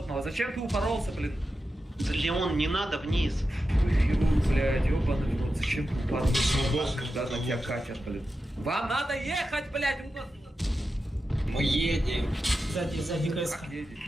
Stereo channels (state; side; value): normal; both; correlation 0.91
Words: Зачем ты упоролся, блин? Леон, не надо вниз. Ой, хирург, блядь, ёбаный в рот. Зачем ты упоролся, когда на тебя катят, блин? Вам надо ехать, блядь! Мы едем. Сзади КС. Как едете?